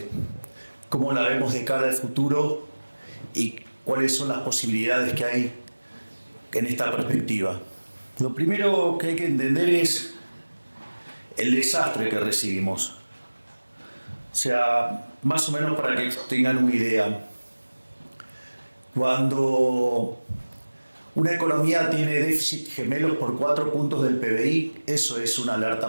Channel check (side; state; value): both; inverted; correlation -1.00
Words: cómo la vemos de cara al futuro y cuáles son las posibilidades que hay en esta perspectiva. Lo primero que hay que entender es el desastre que recibimos. O sea, más o menos para que tengan una idea. Cuando una economía tiene déficit gemelos por 4 puntos del PBI, eso es una alerta